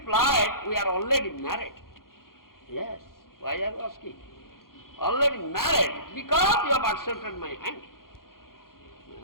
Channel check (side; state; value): right; late; 0.92 ms